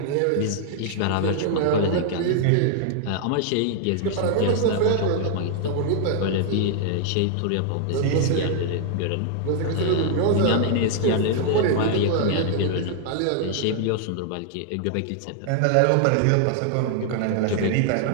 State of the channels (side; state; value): both; different; correlation 0.00